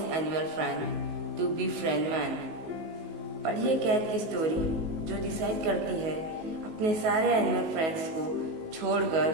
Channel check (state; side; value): late; left; 19 ms